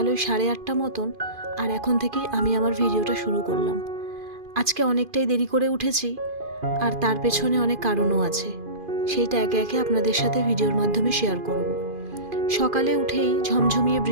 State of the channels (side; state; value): left; late; 2.5 ms